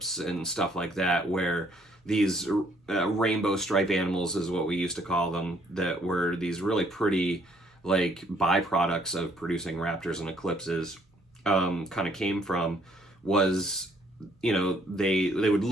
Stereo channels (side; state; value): both; normal; correlation 0.65